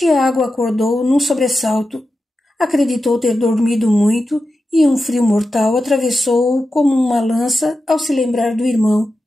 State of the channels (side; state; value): both; normal; correlation 0.91